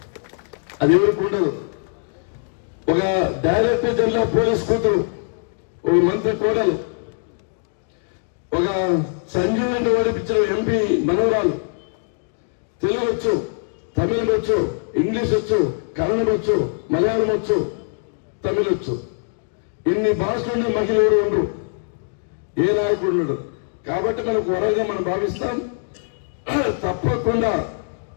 అది ఎవరికి ఉండదు. ఒక డైరెక్టర్ జనరల్ పోలీస్ కూతురు, ఒక మంత్రి కోడలు, ఒక సంజీవ్ రెడ్డి ఓడిపించిన ఎంపీ మనవరాలు. తెలుగు వచ్చు, తమిళం వచ్చు, ఇంగ్లీష్ వచ్చు, కన్నడం వచ్చు, మలయాళం వచ్చు, తమిళ వచ్చు. ఇన్ని భాషలున్న మహిళ ఎవరు ఉండరు, ఏ నాయకుడు ఉండడు. కాబట్టి మనకు వరంగా మనం భావిస్తాం. తప్పకుండా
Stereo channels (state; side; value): silent; right; digital silence